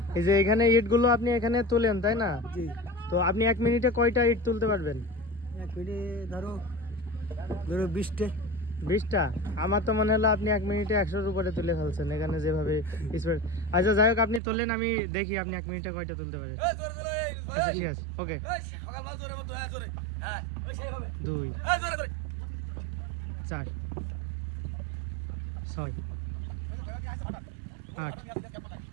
এই যে এখানে ইটগুলো আপনি এখানে তোলেন তাই না? জি। তো আপনি 1 মিনিটে কয়টা ইট তুলতে পারবেন? 1 মিনিটে ধরো 20টা। 20টা? আমার তো মনে হলো আপনি 1 মিনিটে 100-র উপরে তুলে ফেলছেন এখানে যেভাবে স্পিড। আচ্ছা যাই হোক, আপনি তোলেন, আমি দেখি আপনি 1 মিনিটে কয়টা তুলতে পারেন। আচ্ছা ঠিক আছে, ওকে। 2 4 6 8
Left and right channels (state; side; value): drops out; left; at 14.4 s